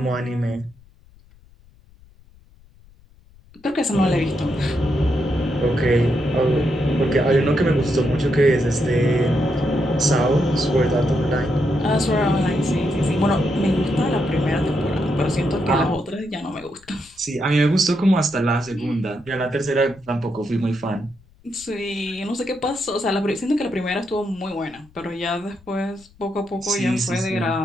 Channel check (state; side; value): noise; left; rumble, 27 dB below the sound